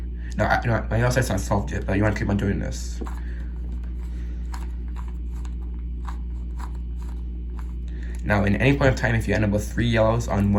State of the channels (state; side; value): identical; both; correlation 1.00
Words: Now, my yellow side's not solved yet, but you want to keep on doing this. Now, in any point of time, if you end up with 3 yellows on